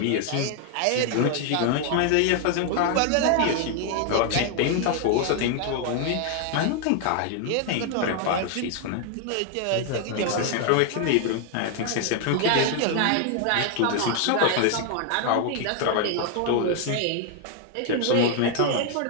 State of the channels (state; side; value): different; both; correlation 0.00